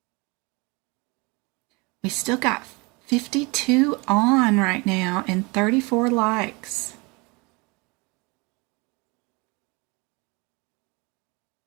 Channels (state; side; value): quieter; left; 27.4 dB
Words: We still got 52 on right now and 34 likes.